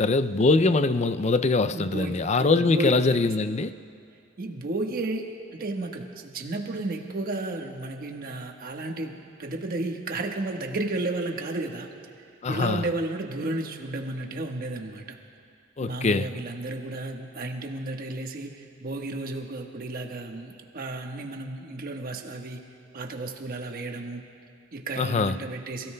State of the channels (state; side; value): normal; both; correlation 0.48